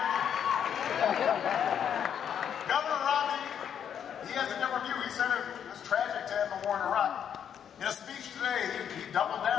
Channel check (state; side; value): quieter; right; 8.6 dB